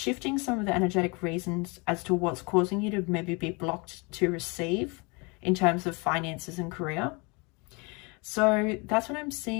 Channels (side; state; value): right; quieter; 29.4 dB